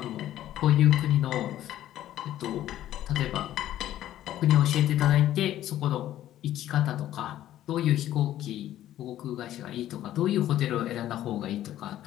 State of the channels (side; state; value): right; quieter; 12.8 dB